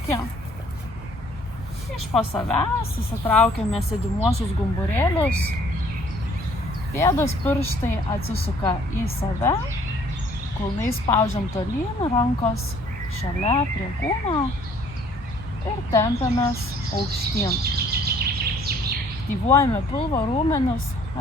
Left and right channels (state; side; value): normal; both; correlation 0.59